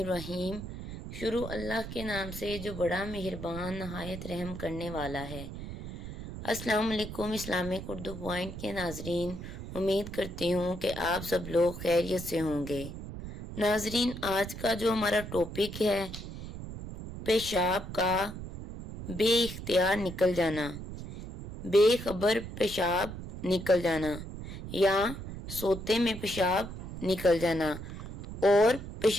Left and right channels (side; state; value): right; noise; rumble, 9 dB below the sound